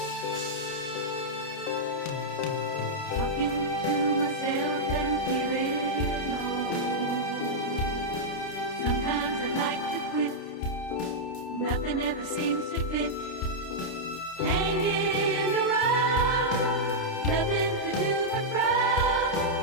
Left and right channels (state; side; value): late; right; 29 ms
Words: to myself and feeling old. Sometimes I like to quit. Nothing ever seems to fit. Hanging around, nothing to do but frown.